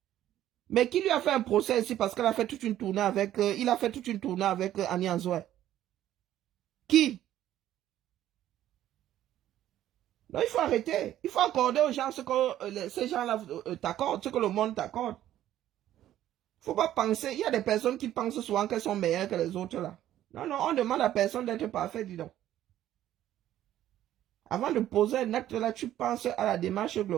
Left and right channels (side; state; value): left; quieter; 12.6 dB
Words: Mais qui lui a fait un procès ici parce qu'elle a fait toute une tournée avec, il a fait toute une tournée avec Annie Anzoé. Qui? Non, il faut arrêter. Il faut accorder aux gens ce que ces gens-là t'accordent, ce que le monde t'accorde. Il ne faut pas penser. Il y a des personnes qui pensent souvent qu'elles sont meilleures que les autres là. Non, non, on demande à personne d'être parfait, dis donc. Avant de poser un acte là, tu penses à la démarche